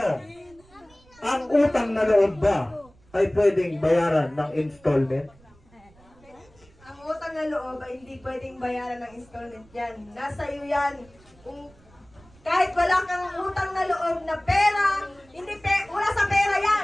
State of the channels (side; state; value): right; noise; rumble, 28 dB below the sound